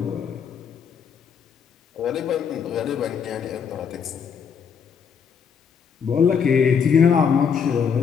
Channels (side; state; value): right; quieter; 6.9 dB